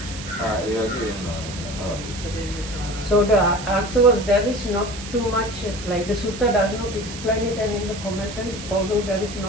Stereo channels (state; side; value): noise; right; hiss, 12 dB below the sound